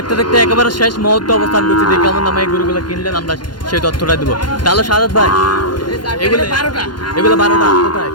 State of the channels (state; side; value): late; right; 0.71 ms